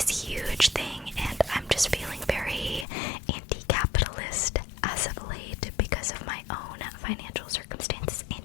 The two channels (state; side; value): drops out; right; at 2.9 s